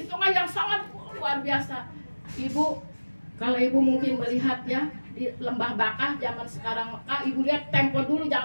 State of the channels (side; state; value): both; inverted; correlation -1.00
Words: tengah yang sangat luar biasa. Ibu, kalau ibu mungkin melihat ya di lembah Bakah zaman sekarang Mekah, ibu lihat tempo dulu